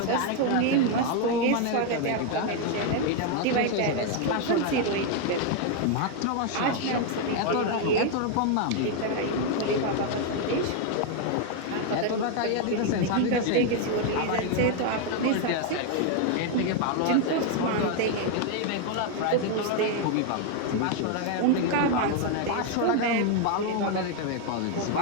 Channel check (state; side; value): different; both; correlation 0.01